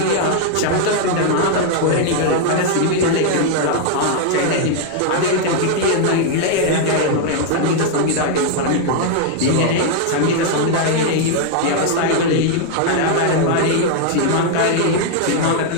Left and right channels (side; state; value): both; different; correlation 0.00